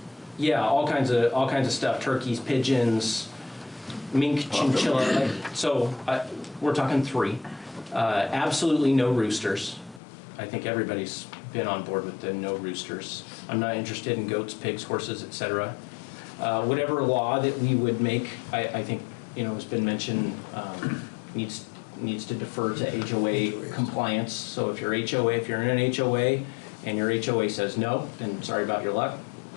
yeah, all kinds of stuff, turkeys, pigeons, mink, chinchilla. So we're talking 3. Absolutely no roosters. I think everybody's been on board with the no roosters. I'm not interested in goats, pigs, horses, etc. Whatever law that we would make, I think, you know, has been mentioned, needs to defer to HOA compliance. So if you're in an HOA and your HOA says no, then sorry about your luck.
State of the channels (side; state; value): right; drops out; at 10.0 s